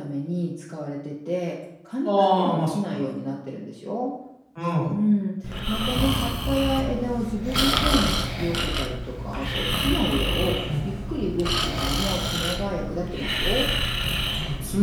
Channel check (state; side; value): identical; both; correlation 1.00